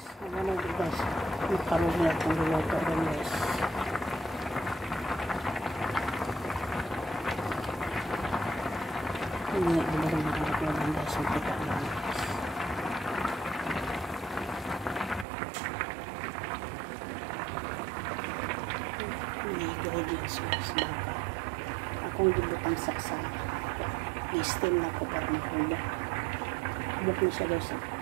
Ano guys, makaroni akong luluto rin guys. Hindi rin makarap na lang guys, ang kita lang guys. Hindi ingredients guys, baka akong gibutang saksan. I-steam na ko para mahulog. Hubok na siya guys.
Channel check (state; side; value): drops out; left; at 15.2 s